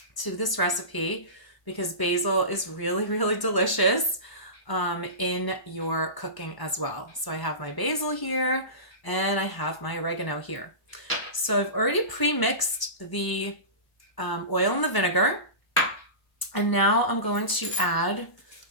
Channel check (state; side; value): late; right; 1.0 ms